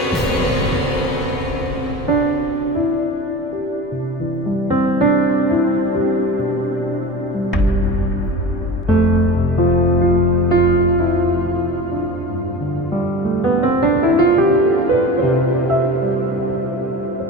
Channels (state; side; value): normal; both; correlation 0.33